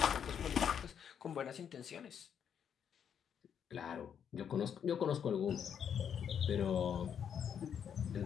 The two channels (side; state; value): right; quieter; 8.2 dB